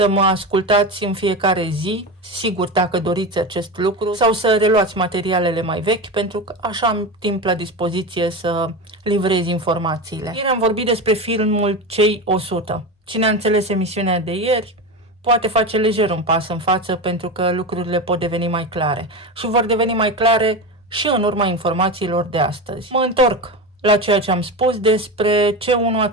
mă ascultați în fiecare zi, sigur dacă doriți acest lucru, sau să reluați materialele mai vechi, pentru că așa am timp la dispoziție să livrez informațiile. Ieri am vorbit despre filmul Cei 100. Cine a înțeles emisiunea de ieri poate face lejer un pas în față, pentru că lucrurile pot deveni mai clare. Și vor deveni mai clare și în urma informațiilor de astăzi. Mă întorc la ceea ce am spus despre C1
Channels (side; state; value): both; normal; correlation 0.22